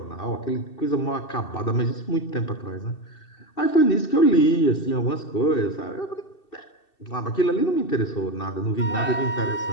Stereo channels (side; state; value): right; late; 2.7 ms